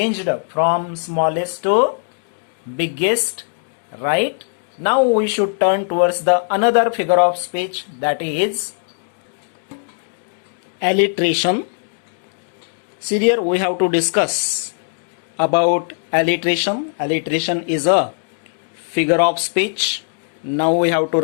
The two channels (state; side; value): silent; right; digital silence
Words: from smallest to biggest, right? Now we should turn towards the another figure of speech, that is alliteration. See here, we have to discuss about alliteration. Alliteration is a figure of speech. Now we have to